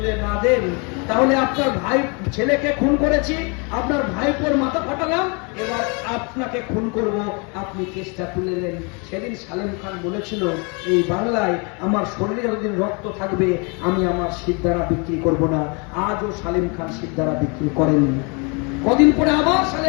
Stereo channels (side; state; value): right; quieter; 32.6 dB